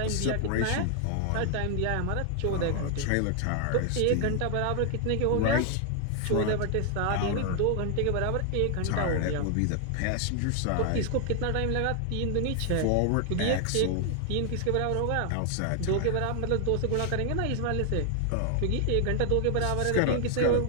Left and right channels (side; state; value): both; different; correlation 0.00